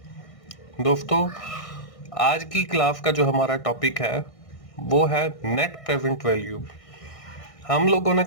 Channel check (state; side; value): late; right; 1.6 ms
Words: दोस्तों, आज की क्लास का जो हमारा टॉपिक है वो है नेट प्रेजेंट वैल्यू। हम लोगों ने